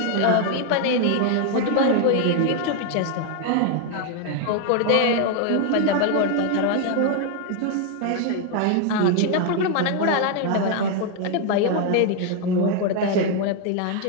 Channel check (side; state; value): both; different; correlation 0.00